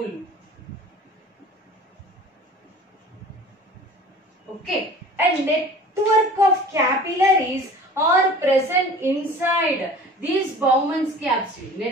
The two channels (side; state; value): both; normal; correlation 0.43